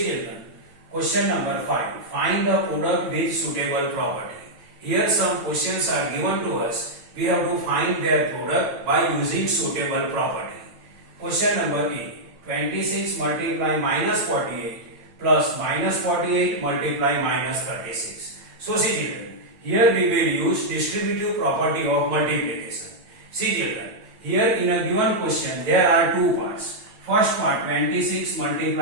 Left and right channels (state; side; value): late; left; 9.0 ms